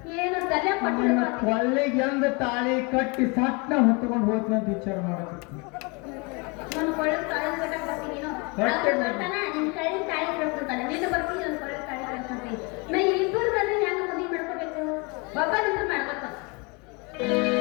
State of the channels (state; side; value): quieter; right; 29.9 dB